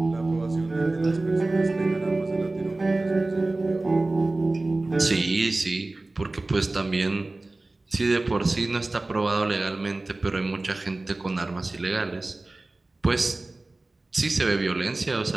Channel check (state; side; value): quieter; left; 3.0 dB